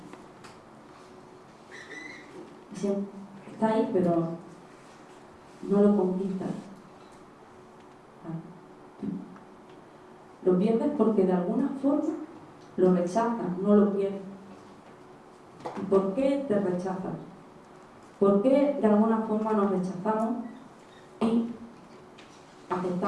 está ahí, pero no lo conquistas. Lo pierdes porque de alguna forma lo rechazas, no lo pierdes. ¿Y por qué te rechazas? ¿Por qué de alguna forma nos rechazamos y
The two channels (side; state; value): both; identical; correlation 1.00